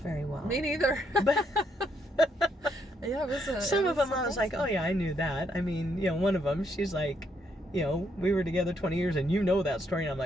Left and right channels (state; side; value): normal; both; correlation 0.74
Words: well. Me neither. But Yeah, it was Some of them I was like, oh yeah, I knew that. I mean, one of them, she's like, we were together 20 years and you know that story. And I'm